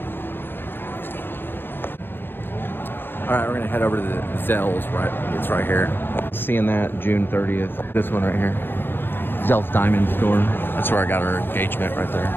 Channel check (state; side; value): late; right; 0.10 ms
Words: All right, we're gonna head over to the Zell's, right? It's right here. Seeing that June 30th. This one right here. Zell's Diamond Store. That's where I got our engagement right